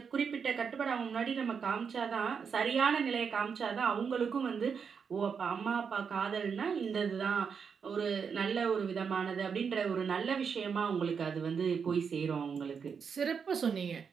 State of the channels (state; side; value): quieter; left; 6.3 dB